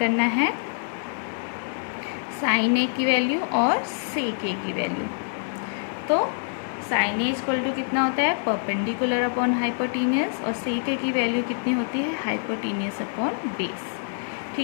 है साइन ए की वैल्यू और सेक ए की वैल्यू। तो साइन ए इक्वल टू कितना होता है, परपेंडिकुलर अपॉन हाइपोटेनियस, और सेक ए की वैल्यू कितनी होती है, हाइपोटेनियस अपॉन बेस,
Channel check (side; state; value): right; silent; 61 dB below the other